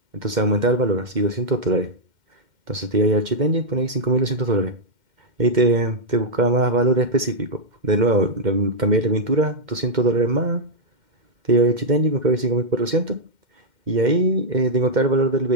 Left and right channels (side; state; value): left; late; 2.1 ms